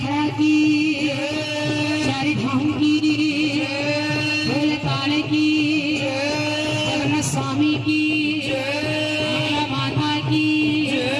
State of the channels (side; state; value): both; identical; correlation 1.00